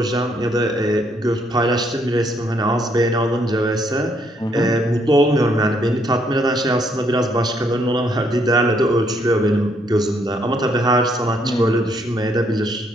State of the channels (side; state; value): both; normal; correlation 0.71